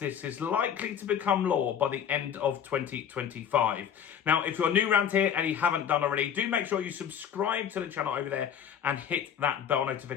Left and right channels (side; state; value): right; quieter; 8.6 dB